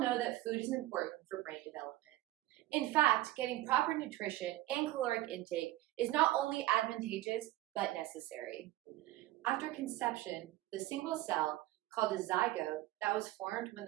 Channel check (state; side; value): quieter; left; 16.2 dB